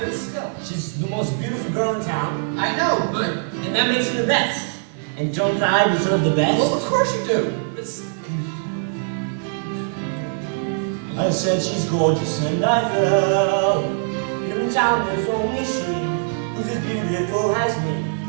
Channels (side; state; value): left; silent; digital silence